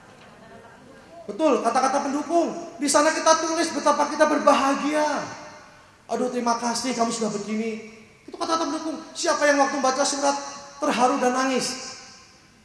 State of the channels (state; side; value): identical; both; correlation 1.00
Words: Betul, kata-kata pendukung. Di sana kita tulis betapa kita berbahagia. Aduh, terima kasih kamu sudah begini. Itu kata-kata pendukung. Siapa yang waktu baca surat terharu dan nangis?